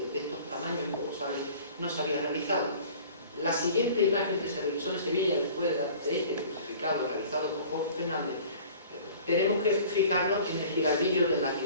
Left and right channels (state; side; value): inverted; both; correlation -0.47